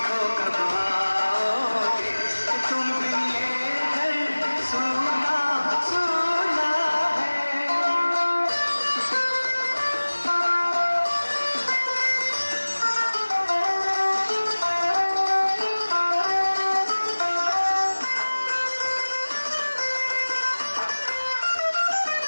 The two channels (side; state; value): both; inverted; correlation -1.00